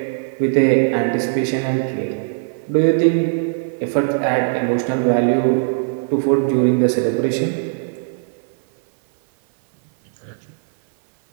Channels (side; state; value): left; silent; 58 dB below the other